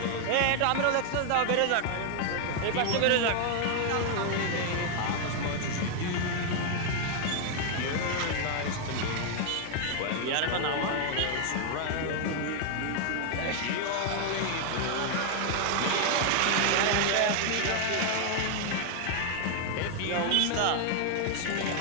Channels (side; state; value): both; different; correlation 0.00